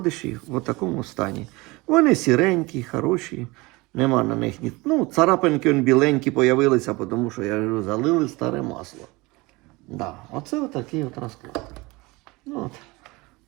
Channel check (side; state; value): left; quieter; 23.3 dB